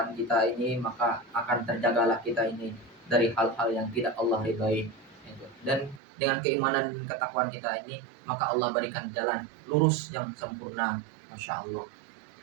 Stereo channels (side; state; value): left; drops out; at 6.0 s